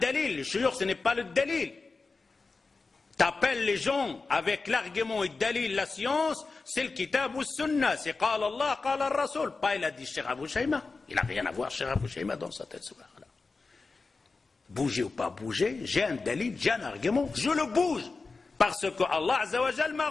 Le shuyukh, ce n'est pas le dalil. T'appelles les gens avec l'argument et le dalil, la science, c'est le kitab ou sunna, c'est qala Allah, qala al-Rasul. Pas il a dit Cheikh Abou Shayma. Il n'a rien à voir Cheikh Abou Shayma dans sa tête. Là. Bouger ou pas bouger, j'ai un dalil, j'ai un argument, je le bouge. Parce que Allah Azza wa Jal m'a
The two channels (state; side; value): quieter; right; 4.1 dB